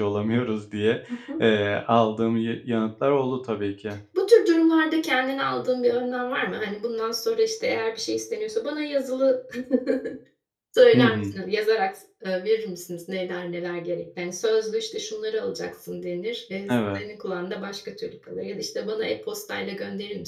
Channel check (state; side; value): identical; both; correlation 1.00